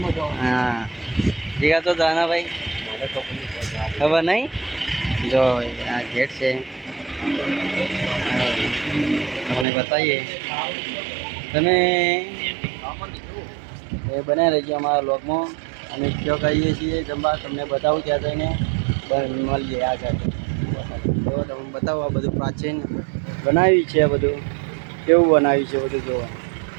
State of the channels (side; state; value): left; drops out; at 9.7 s